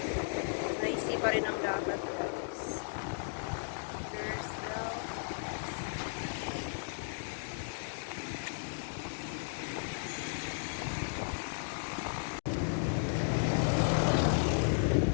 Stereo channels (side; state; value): right; silent; digital silence